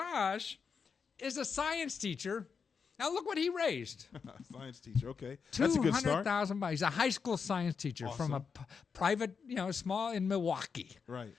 is a science teacher. Now, look what he raised. Science teacher, okay. That's a good start. $200,000. He's a high school science teacher from a private, small in Milwaukee. Right.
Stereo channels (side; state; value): right; quieter; 5.9 dB